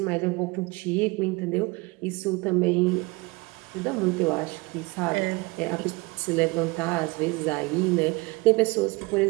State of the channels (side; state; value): left; quieter; 25.2 dB